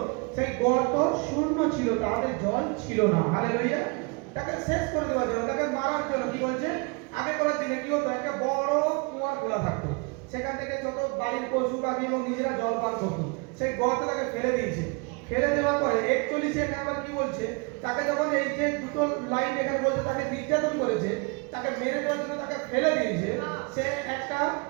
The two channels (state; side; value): quieter; left; 31.0 dB